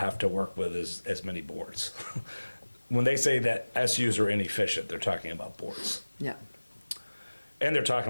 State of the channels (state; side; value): inverted; both; correlation -1.00